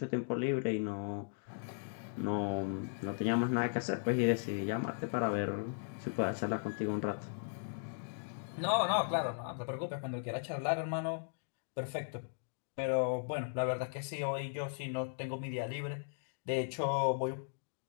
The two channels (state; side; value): silent; right; digital silence